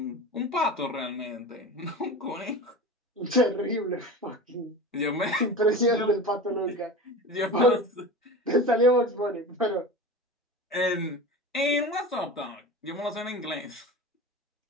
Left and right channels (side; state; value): both; normal; correlation 0.31